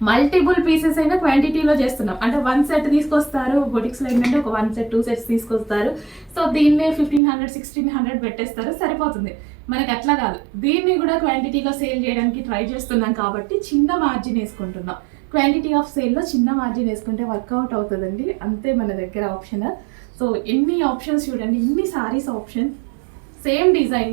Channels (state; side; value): drops out; left; at 7.2 s